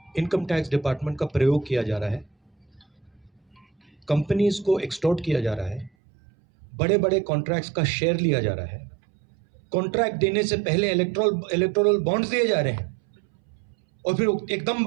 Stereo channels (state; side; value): drops out; left; at 5.9 s